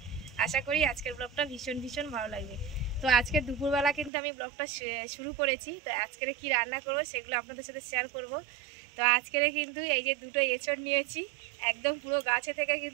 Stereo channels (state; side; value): drops out; left; at 4.1 s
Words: আশা করি আজকের ব্লগটা ভীষণ ভালো লাগবে। তো আজকে দুপুরবেলা কিন্তু আমি ব্লগটা শুরু করেছি। তো আজকের কি রান্না করব সেগুলো আপনাদের সাথে শেয়ার করব। তো আজকের কিন্তু এই যে দুটো এঁচড় নিয়েছি, একদম পুরো গাছে থেকে